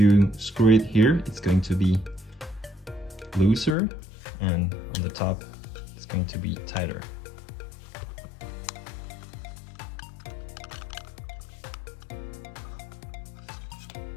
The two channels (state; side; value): drops out; right; at 3.8 s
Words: screw it here, it's going to be looser, and on the top, it's going to be tighter.